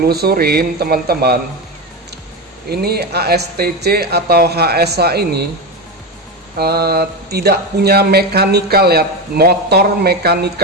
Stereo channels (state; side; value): normal; both; correlation 0.17